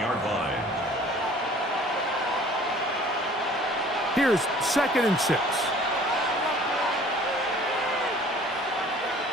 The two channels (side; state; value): both; normal; correlation 0.50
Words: line. Here's 2nd and 6.